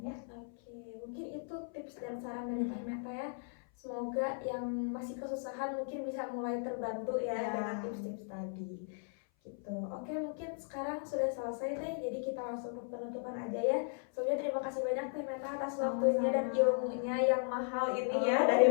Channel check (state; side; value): silent; right; 53 dB below the other